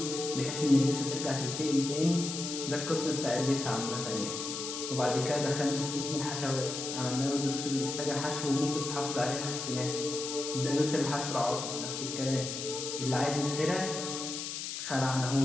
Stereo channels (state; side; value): noise; left; hiss, 5 dB below the sound